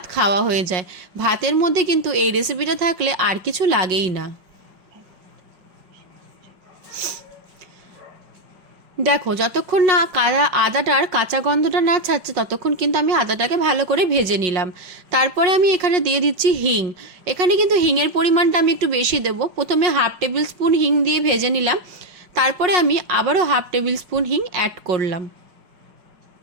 খাওয়া হয়ে যায়। ভাতের মধ্যে কিন্তু এই রেসিপিটা থাকলে আর কিছু লাগেই না। দেখো, যতক্ষণ না আদাটার কাঁচা গন্ধটা না ছাড়ছে ততক্ষণ কিন্তু আমি আদাটাকে ভালো করে ভেজে নিলাম। তারপরে আমি এখানে দিয়ে দিচ্ছি হিং। এখানে কিন্তু হিংয়ের পরিমাণটা আমি একটু বেশি দেবো। প্রথমে হাফ টেবিল স্পুন হিং দিয়ে ভেজে নিলাম। তারপরে আমি আবারও হাফ টেবিল স্পুন হিং অ্যাড করলাম।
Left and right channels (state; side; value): late; left; 5.5 ms